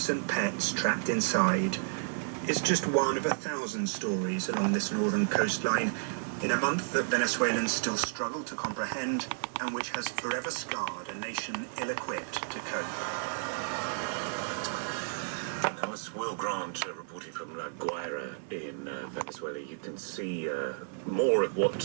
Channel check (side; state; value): left; silent; 56 dB below the other